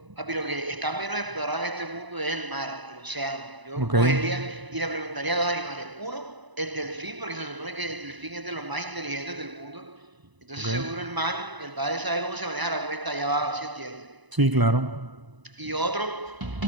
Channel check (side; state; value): left; late; 1.0 ms